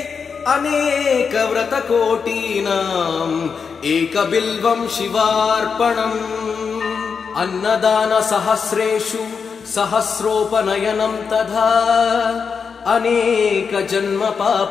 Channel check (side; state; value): right; quieter; 5.9 dB